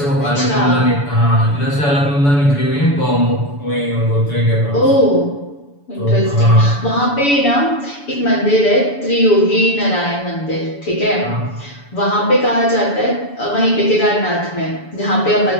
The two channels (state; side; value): late; right; 7.0 ms